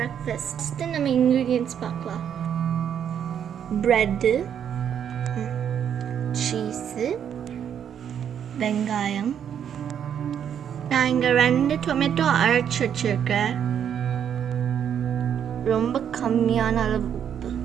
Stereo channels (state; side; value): quieter; left; 8.7 dB